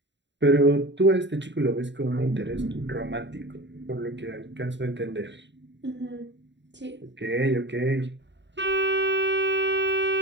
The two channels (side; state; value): left; late; 0.52 ms